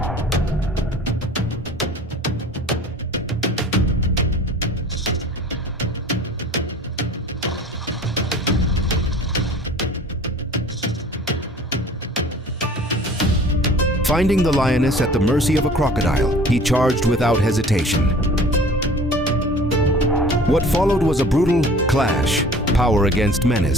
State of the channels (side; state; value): both; normal; correlation 0.46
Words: Finding the lioness at the mercy of a crocodile, he charged without hesitation. What followed was a brutal clash, power against